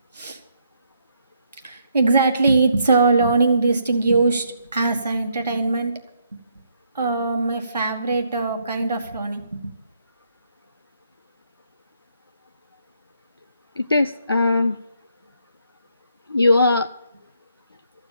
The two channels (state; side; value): inverted; both; correlation -0.73